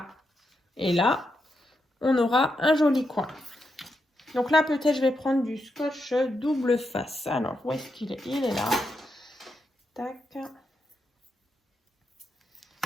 et là, on aura un joli coin. Donc là, peut-être je vais prendre du scotch double face. Alors, où est-ce qu'il est? Il est là. Tac.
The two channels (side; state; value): both; normal; correlation 0.84